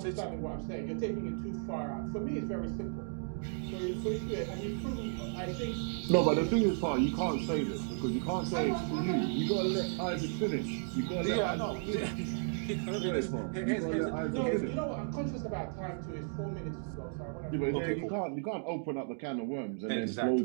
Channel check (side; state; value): left; silent; digital silence